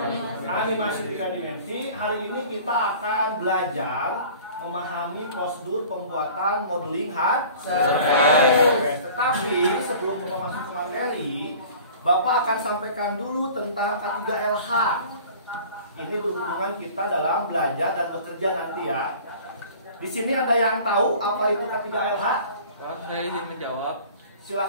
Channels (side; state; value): both; inverted; correlation -0.45